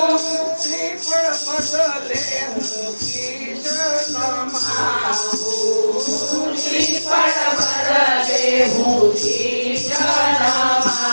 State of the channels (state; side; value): inverted; both; correlation -1.00